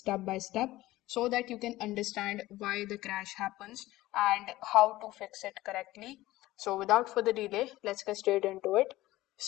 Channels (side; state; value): right; quieter; 17.2 dB